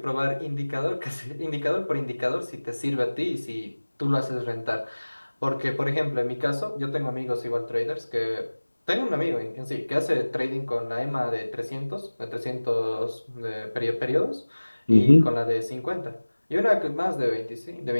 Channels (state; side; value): inverted; both; correlation -1.00